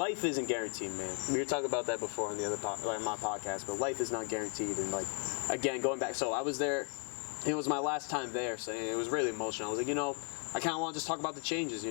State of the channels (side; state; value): right; quieter; 39.1 dB